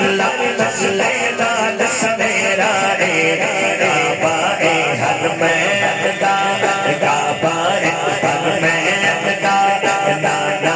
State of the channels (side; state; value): both; identical; correlation 1.00